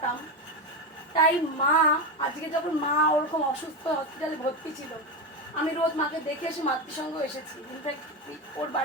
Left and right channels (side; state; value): both; normal; correlation 0.15